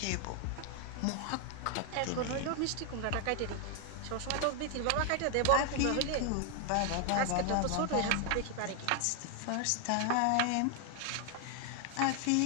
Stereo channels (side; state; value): both; different; correlation 0.00